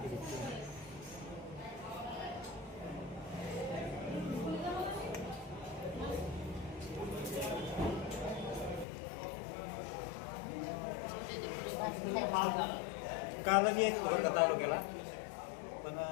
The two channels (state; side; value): drops out; right; at 8.8 s